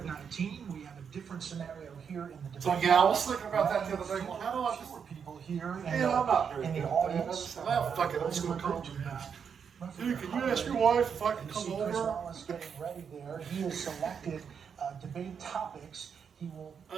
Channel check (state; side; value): quieter; left; 6.9 dB